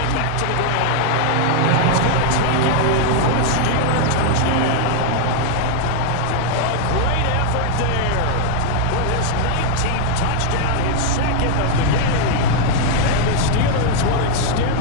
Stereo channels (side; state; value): both; different; correlation 0.00